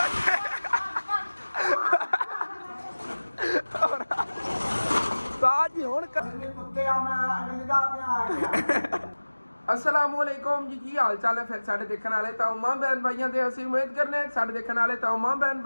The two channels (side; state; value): both; inverted; correlation -1.00